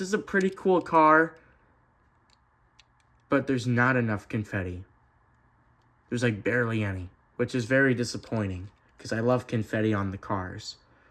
is a pretty cool car, but there's not enough confetti. There's barely any, which is very disappointing because I love confetti on the cars.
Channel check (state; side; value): identical; both; correlation 1.00